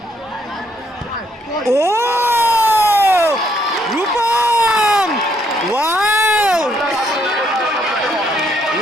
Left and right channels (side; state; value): both; normal; correlation 0.71